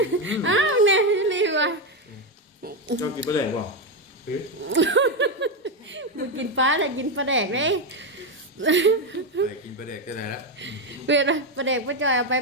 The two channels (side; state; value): both; normal; correlation 0.08